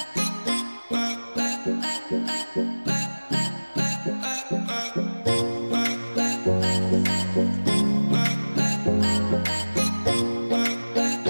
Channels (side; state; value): both; inverted; correlation -1.00